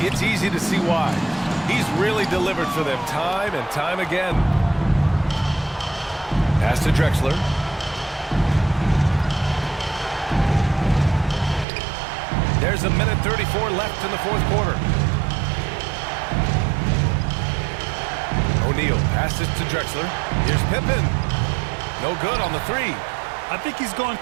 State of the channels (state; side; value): drops out; left; at 11.7 s